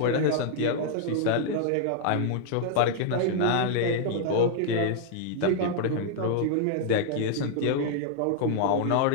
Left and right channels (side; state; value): both; different; correlation -0.01